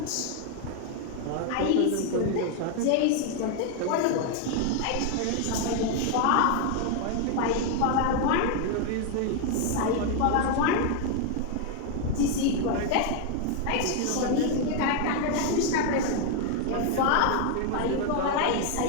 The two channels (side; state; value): both; different; correlation 0.01